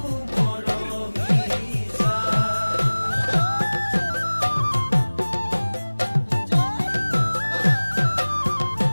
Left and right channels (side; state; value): both; inverted; correlation -1.00